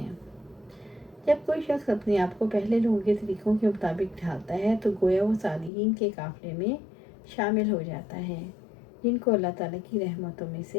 جب کوئی شخص اپنے آپ کو پہلے لوگوں کے طریقوں کے مطابق ڈھالتا ہے تو گویا وہ صالحین کے قافلے میں شامل ہو جاتا ہے جن کو اللہ تعالیٰ کی رحمتوں میں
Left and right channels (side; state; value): right; drops out; at 5.7 s